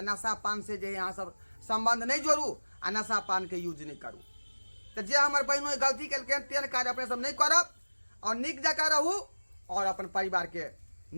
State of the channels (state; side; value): inverted; both; correlation -1.00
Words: नशा पान से जे यहाँ सब संबंध नहीं जोड़ू आ नशा पान के यूज नहीं करू। तो जे हमारे बहनों गलती के तेन कार्य अपने सब नहीं करब और निक जका रहू और अपन परिवार के